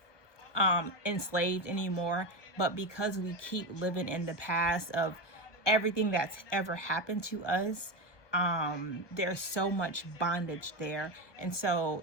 enslaved anymore, but because we keep living in the past of everything that's ever happened to us, there's so much bondage there. And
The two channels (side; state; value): right; late; 1.2 ms